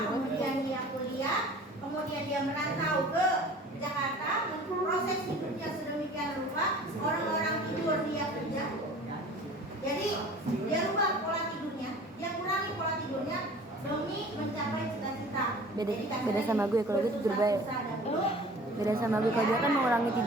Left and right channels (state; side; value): normal; both; correlation 0.45